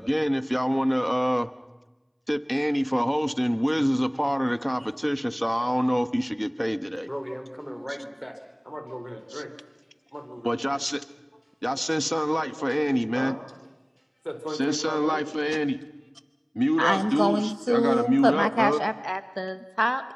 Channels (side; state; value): both; identical; correlation 1.00